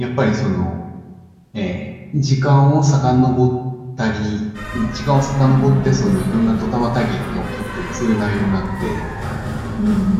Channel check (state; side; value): identical; both; correlation 1.00